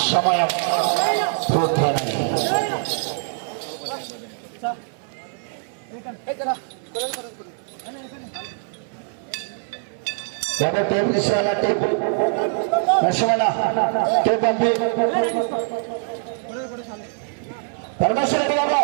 సమయం పూర్తయినది. టేప్ తీసుకోవాలా? టేప్ నష్టమన్న టేప్ పంపి పరమేశ్వర రెడ్డి గారు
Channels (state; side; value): silent; left; 60 dB below the other